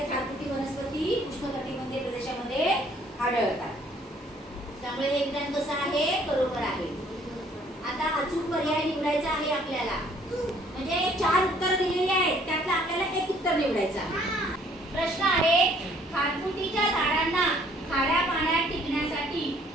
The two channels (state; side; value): normal; both; correlation 0.61